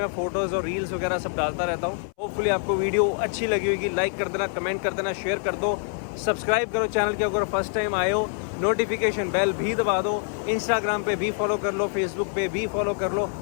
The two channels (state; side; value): silent; right; 61 dB below the other